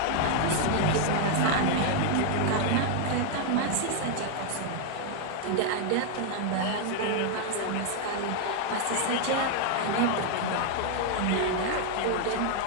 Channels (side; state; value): both; different; correlation 0.00